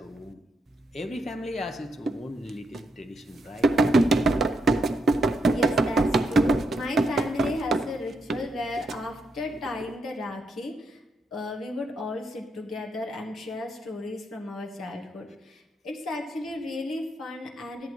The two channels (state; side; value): normal; both; correlation 0.80